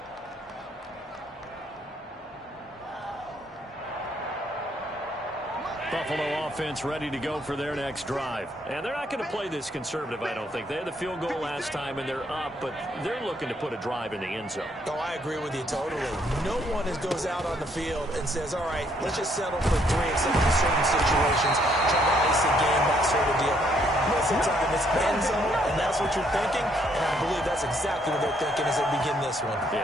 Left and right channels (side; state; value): both; normal; correlation 0.69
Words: Buffalo offense ready to go for their next drive. And they're not going to play this conservative, I don't think. They had the field goal last time, and they're up, but they're looking to put a drive in the end zone. Oh, I agree with you totally. No one goes out on the field and says, all right, let's just settle for 3 except in certain situations, try to ice a game, that sort of deal. Most of the time, it's end zone, and that's what you're thinking, and I believe that's exactly what they're thinking as they begin this one.